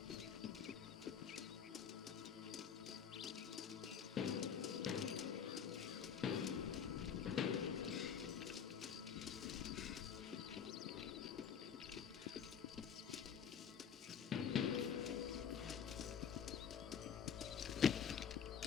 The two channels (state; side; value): quieter; right; 7.5 dB